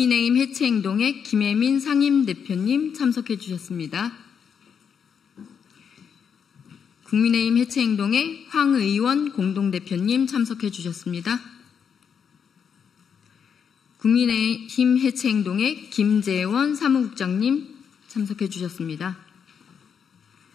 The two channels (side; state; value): right; quieter; 7.1 dB